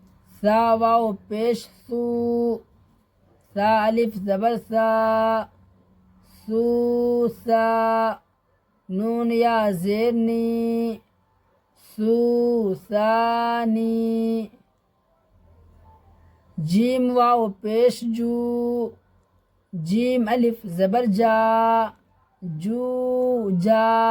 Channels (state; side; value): identical; both; correlation 1.00